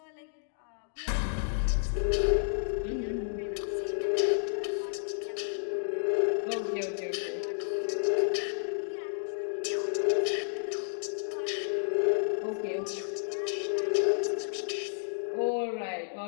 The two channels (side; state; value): right; silent; digital silence